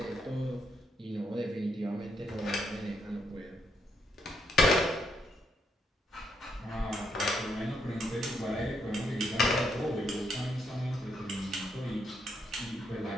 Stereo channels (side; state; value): both; normal; correlation 0.76